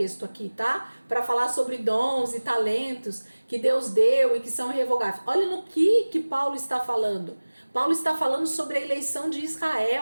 aqui, tá? Para falar sobre dons e talentos que Deus deu e que são irrevogáveis. Olha no que Paulo está falando. Paulo está falando sobre a eleição de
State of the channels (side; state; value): both; inverted; correlation -1.00